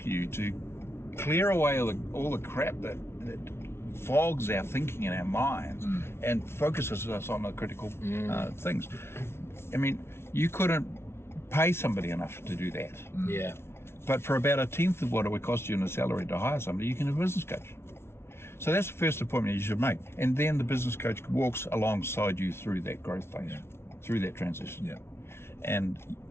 you to clear away all the crap that fogs our thinking in our minds and focuses us on the critical things. I mean, you couldn't pay somebody enough to do that. Yeah. But for about a tenth of what it would cost you in a salary to hire somebody, you can have a business coach. So that's the first appointment you should make. And then the business coach walks alongside you through that growth phase, through that transition. Yeah. And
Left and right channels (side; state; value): right; late; 0.12 ms